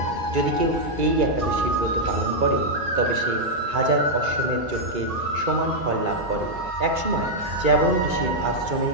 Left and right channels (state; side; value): late; left; 2.3 ms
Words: যদি কেউ এই একাদশী ব্রত পালন করে তবে সে 1000 অশ্বমেধ যজ্ঞের সমান ফল লাভ করে। একসময় চ্যবন ঋষির আশ্রমে